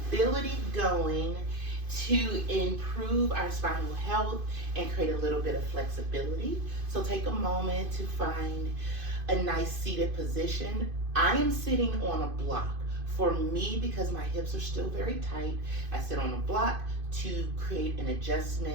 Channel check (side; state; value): left; late; 2.5 ms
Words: going to improve our spinal health and create a little bit of flexibility. So take a moment to find a nice seated position. I am sitting on a block. For me, because my hips are still very tight, I sit on a block to create an